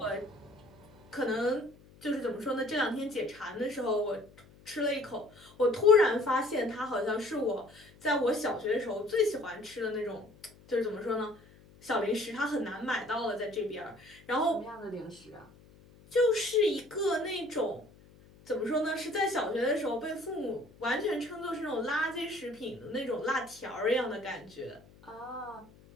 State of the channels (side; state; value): left; noise; hum, 25 dB below the sound